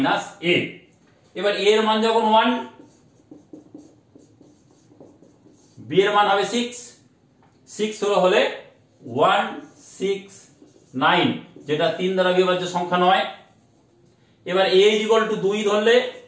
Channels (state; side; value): identical; both; correlation 1.00